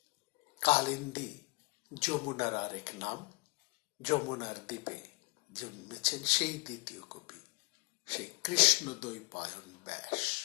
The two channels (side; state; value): right; quieter; 28.1 dB